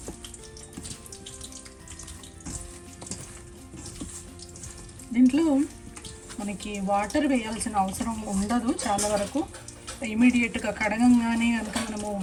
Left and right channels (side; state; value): both; identical; correlation 1.00